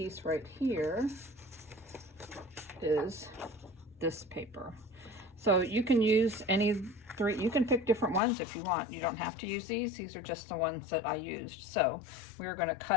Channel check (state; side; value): drops out; right; at 8.2 s